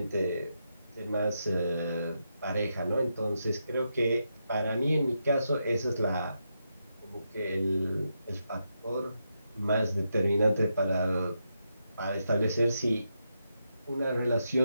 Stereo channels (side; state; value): both; inverted; correlation -0.84